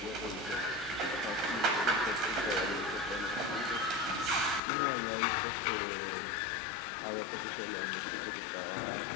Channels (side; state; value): right; drops out; at 4.6 s